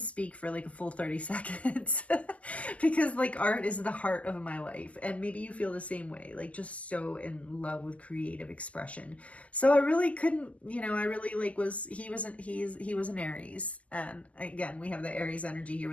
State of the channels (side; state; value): right; late; 0.069 ms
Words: for like a full 30 seconds because like art is the heart of my life. And maybe you feel the same way, like just so in love with creative expression. So I really couldn't, I really like he was an Aries. And again, we have the Aries energy here